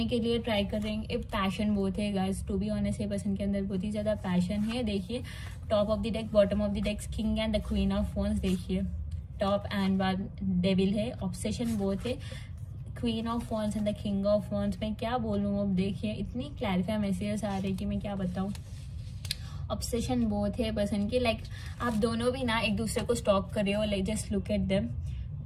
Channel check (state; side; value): identical; both; correlation 1.00